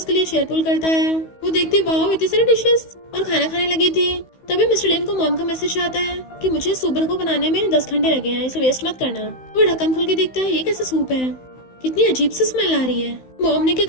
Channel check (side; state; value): right; late; 16 ms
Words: लिए चेयर पुल करता है। वो देखती वाह इतनी सारी डिशेस और खाना खाने लगी थी। तभी मिस्टर लिन को मॉम का मैसेज आता है कि मुझे सूप को बनाने में 10 घंटे लगे हैं, इसे वेस्ट मत करना। वो ढक्कन खोल के देखता है ये कैसा सूप है, कितनी अजीब सी स्मेल आ रही है। मॉम ने क्या